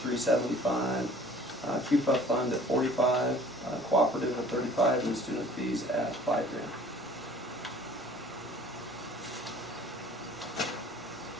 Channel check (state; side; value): normal; both; correlation 0.51